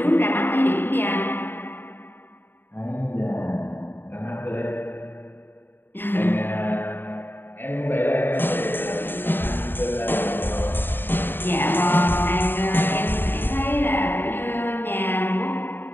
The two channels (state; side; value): late; right; 0.097 ms